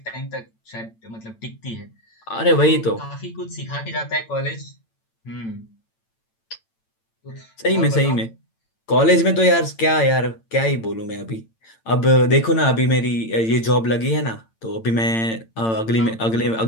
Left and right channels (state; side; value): late; right; 8.9 ms